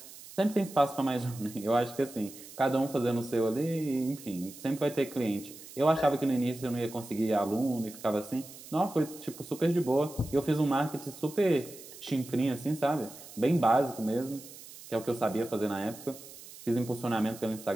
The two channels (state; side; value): noise; right; hiss, 17 dB below the sound